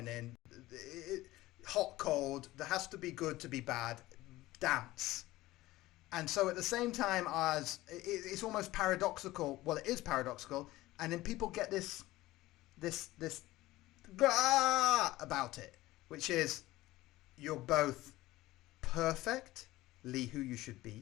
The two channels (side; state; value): right; quieter; 17.6 dB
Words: hot, cold. There has to be good to be bad. Dance. And so at the same time as it's almost paradoxical. Well, it is paradoxical, and then people get this about it, which is you're both perfectly who you should